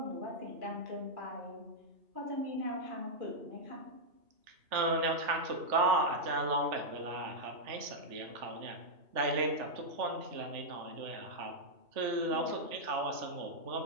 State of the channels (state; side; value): late; left; 3.4 ms